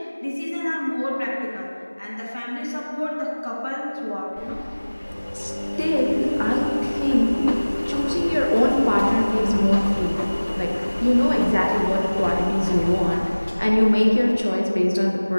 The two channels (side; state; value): both; inverted; correlation -1.00